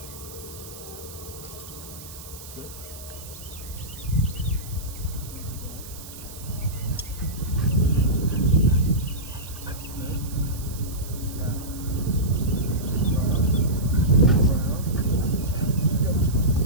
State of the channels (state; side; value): noise; right; hiss, 15 dB below the sound